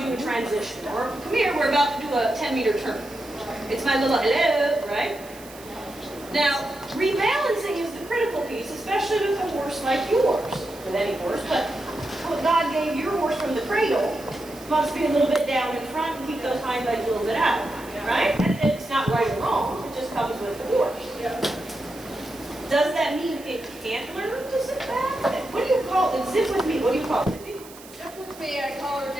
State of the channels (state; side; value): noise; right; hiss, 19 dB below the sound